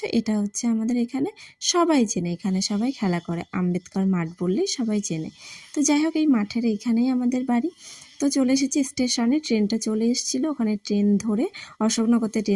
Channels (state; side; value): identical; both; correlation 1.00